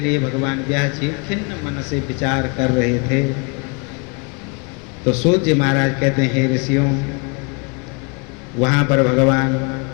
भगवान व्यास जी खिन्न मन से विचार कर रहे थे। तो सूत जी महाराज कहते हैं, हे ऋषियों, वहाँ पर भगवान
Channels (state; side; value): quieter; right; 33.2 dB